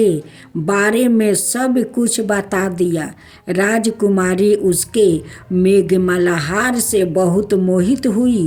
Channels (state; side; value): identical; both; correlation 1.00